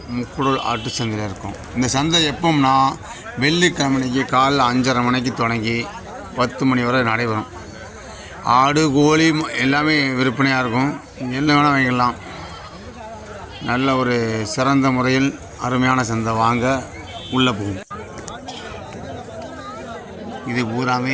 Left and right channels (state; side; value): identical; both; correlation 1.00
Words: முக்குடல் ஆட்டு சந்தையில் இருக்கோம். இந்த சந்தை எப்போம்னா வெள்ளிக்கிழமைக்கு காலைல 5:30 மணிக்கு தொடங்கி 10 மணி வரை நடைபெறும். ஆடு கோழி எல்லாமே விற்பனையாக இருக்கும். என்ன வேணால் வாங்கிடலாம். நல்ல ஒரு சிறந்த முறையில் அருமையான சந்தை. வாங்க உள்ளே போகும். இது பூராமே